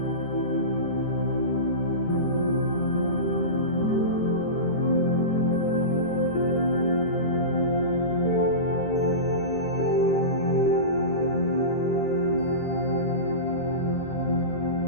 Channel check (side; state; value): right; late; 13 ms